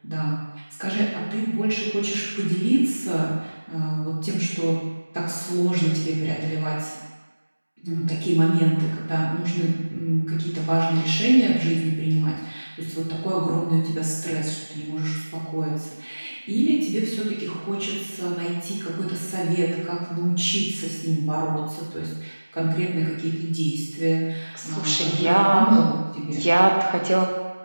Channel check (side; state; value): both; inverted; correlation -1.00